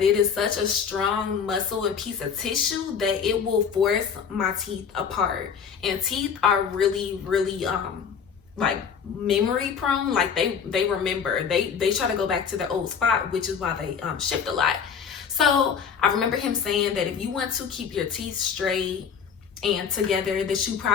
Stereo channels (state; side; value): quieter; right; 6.8 dB